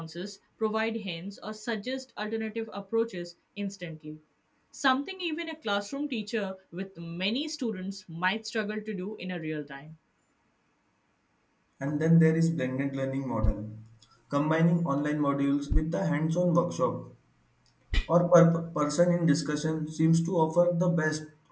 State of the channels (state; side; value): identical; both; correlation 1.00